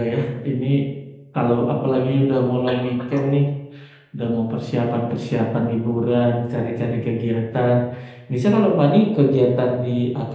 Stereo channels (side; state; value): both; identical; correlation 1.00